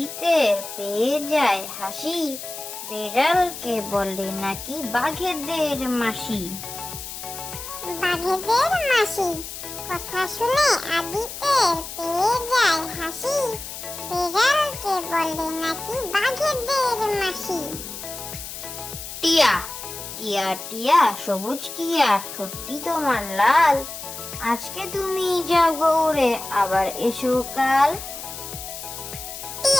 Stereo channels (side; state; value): left; noise; hiss, 10 dB below the sound